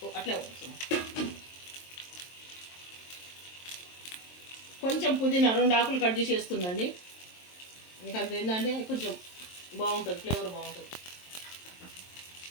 అట్లా కొంచెం పుదీనా 2 ఆకులు కట్ చేసి వేస్తుందండి. మీకు అంత ఏంటంటే కొంచెం బాగుంటుంది, ఫ్లేవర్ బాగుంటుంది.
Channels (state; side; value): late; right; 23 ms